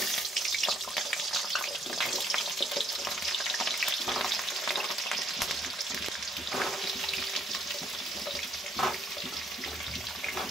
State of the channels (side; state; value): both; normal; correlation 0.67